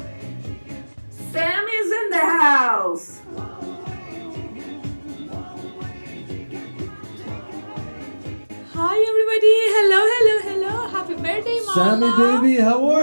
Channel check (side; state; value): both; inverted; correlation -1.00